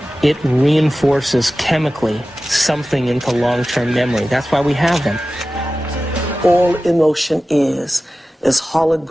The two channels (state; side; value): normal; both; correlation 0.95